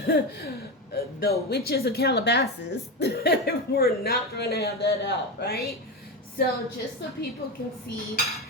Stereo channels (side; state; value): both; normal; correlation 0.17